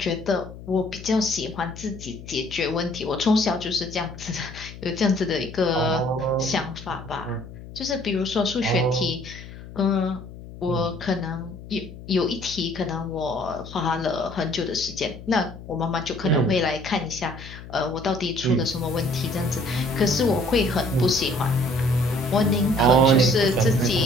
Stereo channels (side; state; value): left; noise; hum, 14 dB below the sound